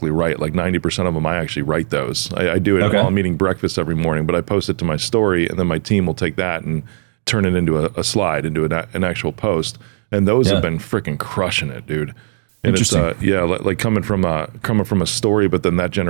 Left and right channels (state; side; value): silent; left; digital silence